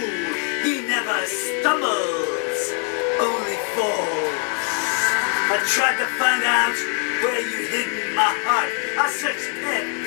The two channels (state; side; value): quieter; right; 37.1 dB